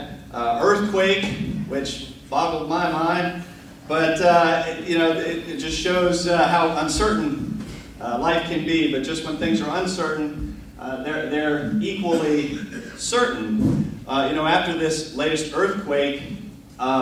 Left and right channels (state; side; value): identical; both; correlation 1.00